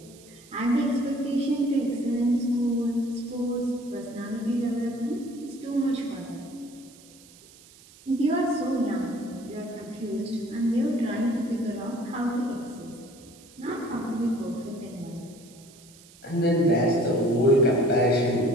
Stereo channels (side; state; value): right; noise; hiss, 23 dB below the sound